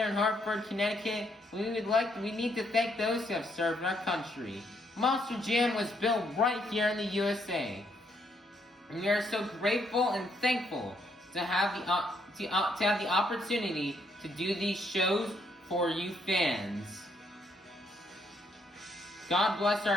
in Hartford, Connecticut, we need to thank those who have served our country. Monster Jam was built right here in the USA. And we are so grateful and thankful to have the opportunity to do these shows for you fans. God bless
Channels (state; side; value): normal; both; correlation 0.73